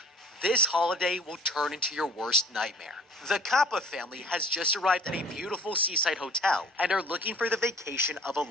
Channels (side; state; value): both; normal; correlation 0.49